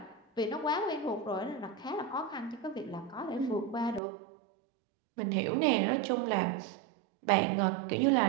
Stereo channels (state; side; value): drops out; left; at 4.0 s